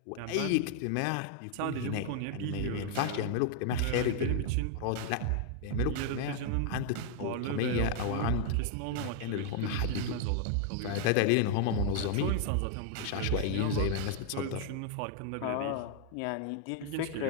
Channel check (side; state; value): both; different; correlation 0.00